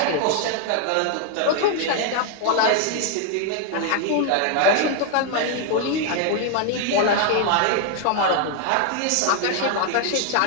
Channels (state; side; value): different; both; correlation 0.00